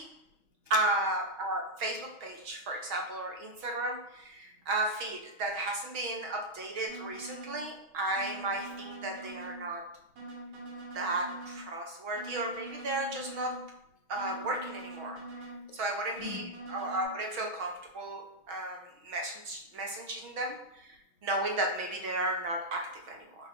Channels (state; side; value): late; left; 6.2 ms